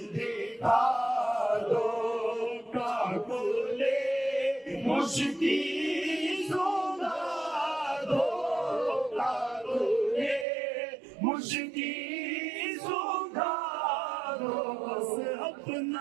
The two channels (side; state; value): left; drops out; at 10.5 s